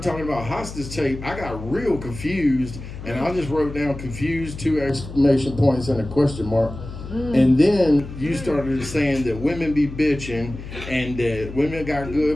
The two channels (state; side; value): noise; left; hum, 11 dB below the sound